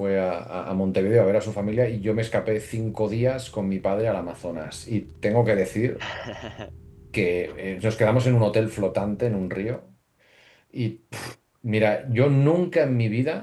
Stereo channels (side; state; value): both; identical; correlation 1.00